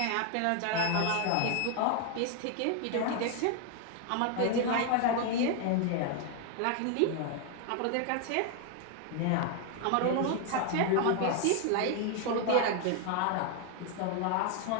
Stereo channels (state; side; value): different; both; correlation 0.01